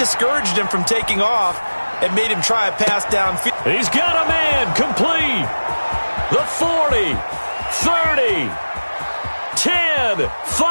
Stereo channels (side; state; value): both; inverted; correlation -1.00